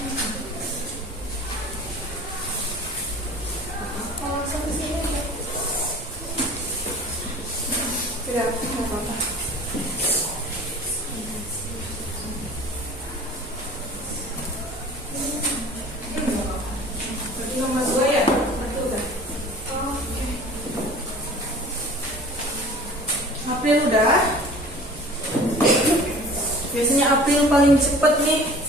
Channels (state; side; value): normal; both; correlation 0.45